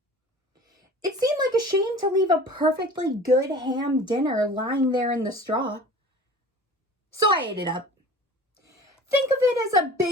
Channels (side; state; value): both; normal; correlation 0.42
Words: It seemed like a shame to leave a perfectly good ham dinner lying there in the straw. So I ate it up. Think of it as a